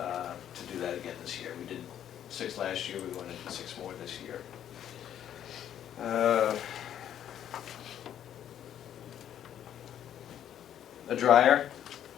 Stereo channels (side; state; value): right; quieter; 10.3 dB